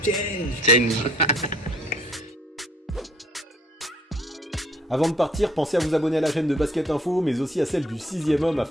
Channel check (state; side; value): normal; both; correlation 0.60